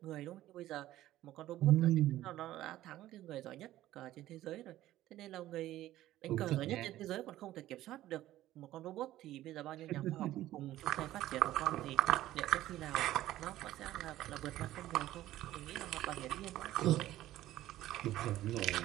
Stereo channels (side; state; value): left; quieter; 14.5 dB